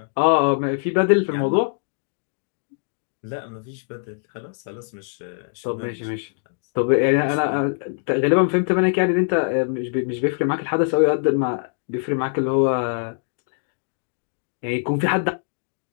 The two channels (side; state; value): right; silent; digital silence